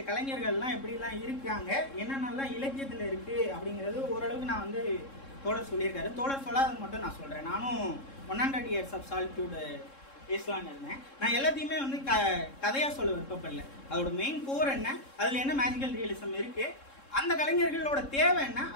கலைஞர்கள்லாம் எப்படிலாம் இருக்காங்க, என்னென்னலாம் இலக்கியத்தில் இருக்கு அப்படிங்கிறது ஓரளவுக்கு நான் வந்து தோழர் சொல்லியிருக்காரு. தோழர் சொல்லாதது மட்டும் நான் சொல்றேன். நானும் 100 Years of Solitude பேசலான்னு இருந்தேன். நான் எல்லாத்தையுமே வந்து கதையா சொல்ல விருப்பப்படல. அதோட மெயின் கோர் என்ன, அதுல என்ன மேஜிக்கல் ரியலிசம் இருக்கு, அந்த கலைஞர்களோட தேவை என்ன,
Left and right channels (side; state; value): right; late; 3.7 ms